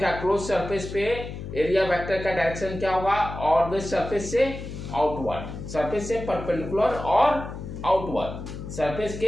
क्लोज सरफेस पे एरिया वेक्टर का डायरेक्शन क्या होगा? ऑलवेज सरफेस से आउटवर्ड, सरफेस से परपेंडिकुलर और आउटवर्ड, सरफेस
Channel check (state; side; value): noise; left; hum, 9 dB below the sound